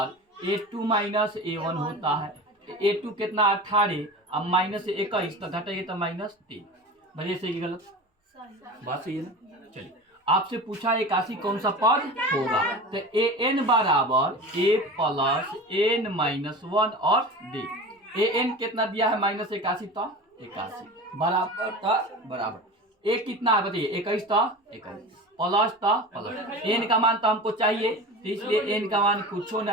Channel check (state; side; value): normal; both; correlation 0.32